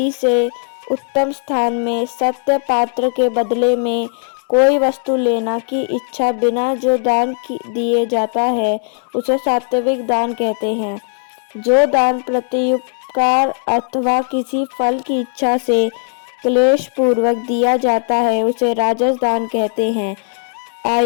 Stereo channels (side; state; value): right; silent; 59 dB below the other